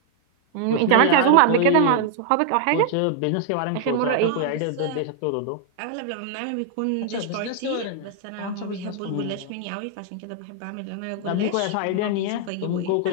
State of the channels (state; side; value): different; both; correlation 0.00